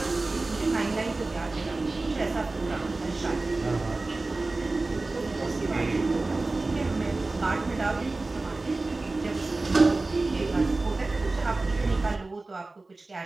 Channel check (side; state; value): left; quieter; 3.3 dB